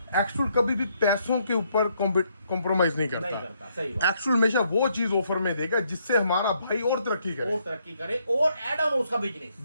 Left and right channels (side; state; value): both; inverted; correlation -0.73